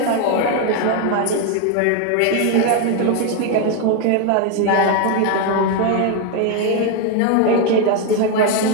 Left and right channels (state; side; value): different; both; correlation 0.01